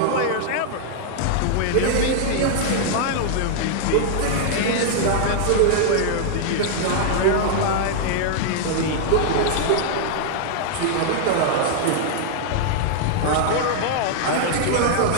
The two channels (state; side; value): different; both; correlation -0.01